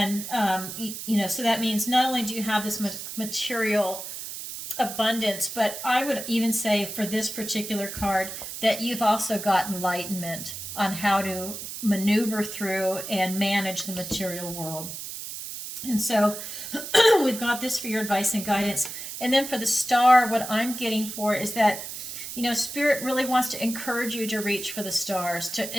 so that means not only do you have this material abundance, but I would even say for this particular card that you've also got enlightenment on how to maneuver through and manage the material world. And so we've got this for your advice and guidance. And then for the Star, what I'm getting for is that, Spirit really wants to encourage you to reach for the stars,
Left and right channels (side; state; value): right; noise; hiss, 8 dB below the sound